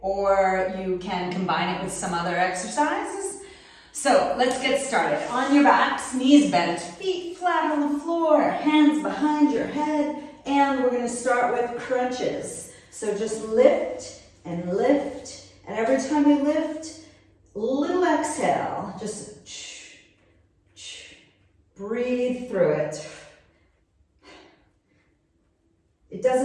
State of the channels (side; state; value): both; identical; correlation 1.00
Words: or you can combine it with some other exercises. So let's get started. On your backs, knees bent, feet flat on the floor, hands behind your head, and we're going to start with crunches. So just lift, and every time you lift, little exhale, just breathe through it. It